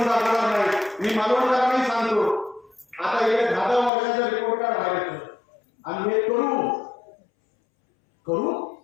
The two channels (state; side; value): drops out; right; at 3.9 s